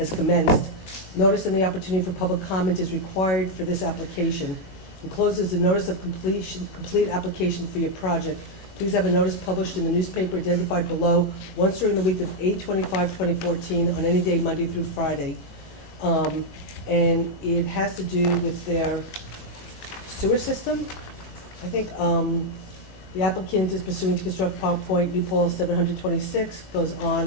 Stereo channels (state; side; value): late; right; 21 ms